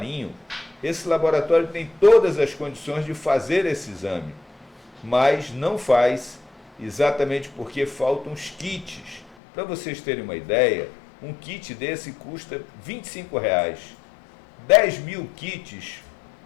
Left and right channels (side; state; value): right; drops out; at 9.3 s